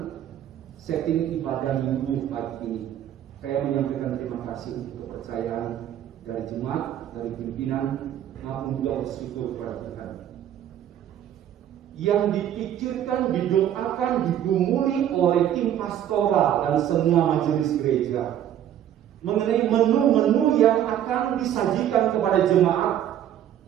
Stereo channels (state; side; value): quieter; left; 10.8 dB